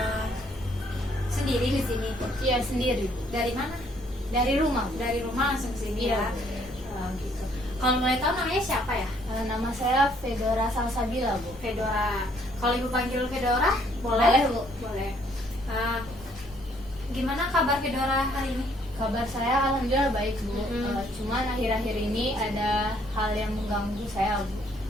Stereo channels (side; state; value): both; normal; correlation 0.65